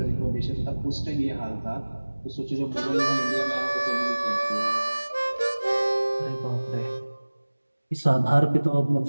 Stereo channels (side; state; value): both; inverted; correlation -1.00